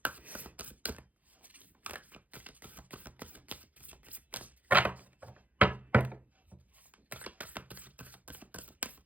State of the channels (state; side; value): late; left; 0.077 ms